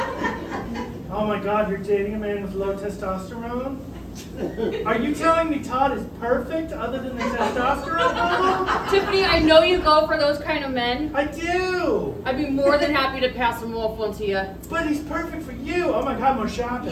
Oh my God, you're dating a man with low testosterone? Are you telling me Todd is perfect other than the testosterone level? Tiffany, I know you go for those kind of men. I do! I'd be more than happy to pass him off one to you. But he's perfect for you! Oh my God, more shopping.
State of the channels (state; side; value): identical; both; correlation 1.00